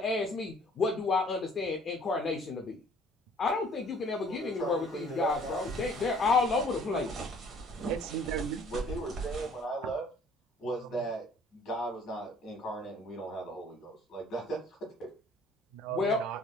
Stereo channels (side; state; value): both; normal; correlation 0.56